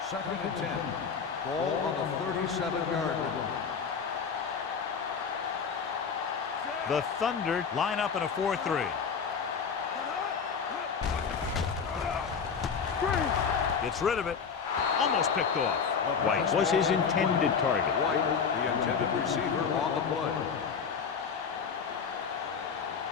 Second and 10. Ball on the 37-yard line. The Thunder line up in a 4-3. Gets rid of it. Almost picked off. White was his intended target. White, the intended receiver on the play.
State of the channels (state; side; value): quieter; right; 6.2 dB